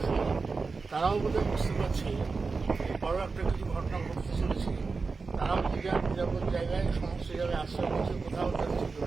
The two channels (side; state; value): left; quieter; 4.4 dB